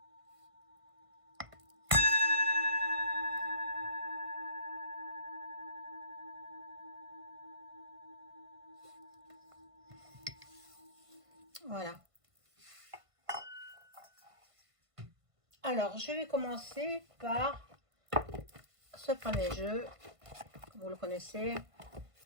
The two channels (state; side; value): late; left; 1.5 ms